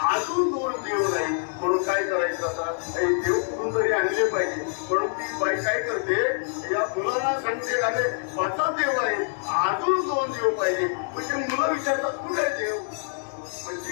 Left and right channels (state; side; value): silent; right; 61 dB below the other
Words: अजून 2 देव नाही. म्हणून काय करायचं, आता हे देव कुठून तरी आणले पाहिजे. म्हणून ती बाई काय करते, या मुलांना सांगते, अरे 5च देव आहेत, अजून 2 देव पाहिजे. म्हणजे मुलं विचारतात कुठे देव,